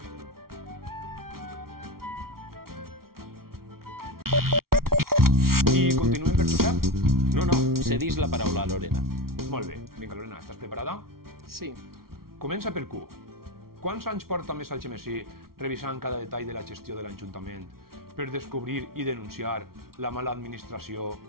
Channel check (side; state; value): left; late; 0.93 ms